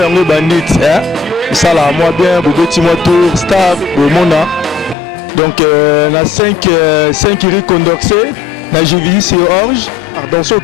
yango bandit ça là moi bien bobeti moi tour staff bomona. Donc na 5 iri condorcé na Jivisi Orge, dans ce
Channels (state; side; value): drops out; right; at 5.0 s